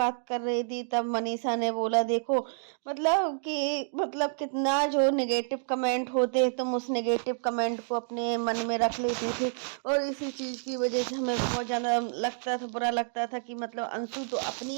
कर रही थी? तब मनीषा ने बोला, देखो मतलब कि मतलब कितना जो नेगेटिव कमेंट होते हैं, तुम उस नेगेटिव कमेंट को अपने मन में रख लेती थी, और इसी चीज़ की वजह से हमें बहुत ज़्यादा लगता था, बुरा लगता था कि मतलब अंशु तो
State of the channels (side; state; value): left; silent; digital silence